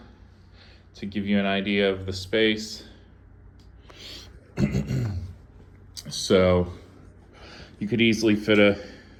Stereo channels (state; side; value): identical; both; correlation 1.00